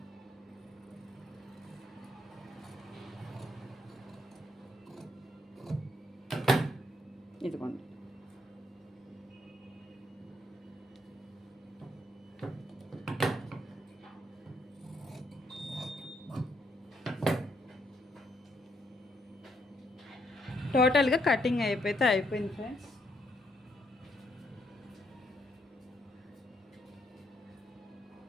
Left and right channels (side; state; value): both; normal; correlation 0.74